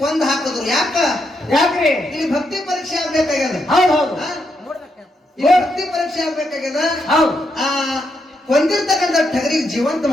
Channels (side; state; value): both; normal; correlation 0.80